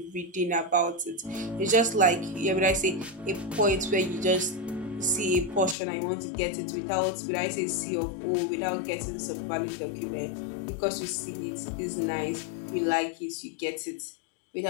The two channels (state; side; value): drops out; right; at 5.8 s